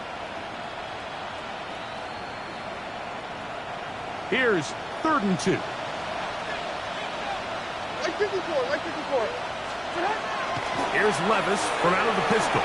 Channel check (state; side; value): identical; both; correlation 1.00